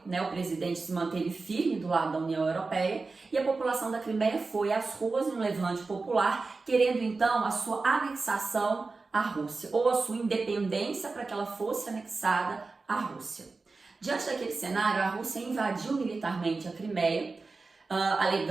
né? O presidente se manteve firme do lado da União Europeia e a população da Crimeia foi às ruas em um levante popular, querendo então a sua anexação à Rússia, ou a sua independência para que ela fosse anexada à Rússia. Diante daquele cenário, a Rússia invadiu militarmente a Crimeia,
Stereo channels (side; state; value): left; quieter; 3.9 dB